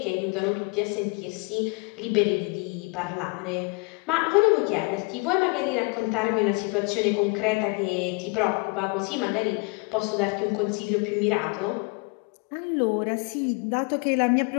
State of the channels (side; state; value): right; quieter; 30.8 dB